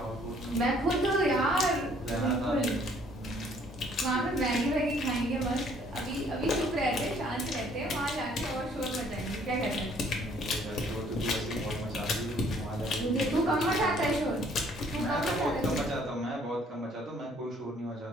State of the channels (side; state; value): both; normal; correlation 0.61